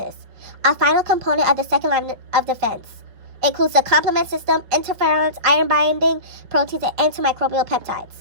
a final component of the second line of defense, includes the complement system, interferons, iron-binding proteins, and antimicrobial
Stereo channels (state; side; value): late; left; 5.3 ms